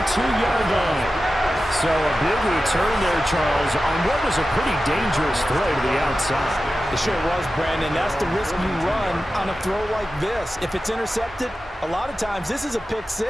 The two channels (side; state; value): both; normal; correlation 0.93